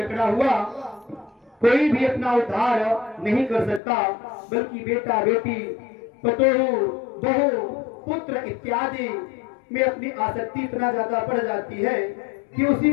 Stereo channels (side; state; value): right; drops out; at 3.8 s